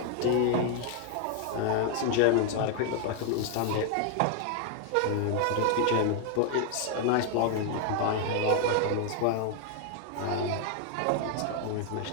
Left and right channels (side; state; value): both; different; correlation 0.00